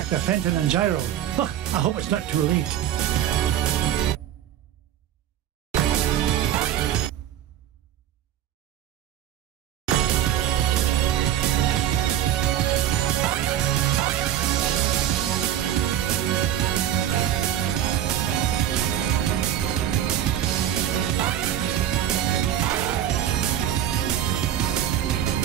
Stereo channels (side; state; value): left; quieter; 11.0 dB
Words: to Fenton and Gyro. I hope it's not too late.